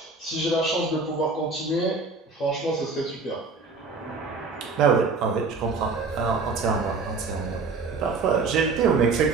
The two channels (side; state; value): left; quieter; 4.2 dB